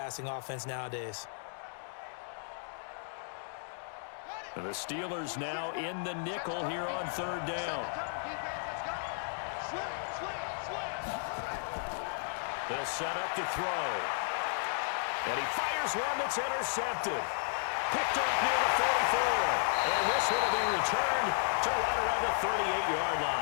offense nowadays. And the Steelers now in the nickel here on 3rd down. They'll set up to throw. And he fires one that's intercepted. Picked up near the 44. And this one will be returned to right around the 38-yard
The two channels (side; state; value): right; silent; digital silence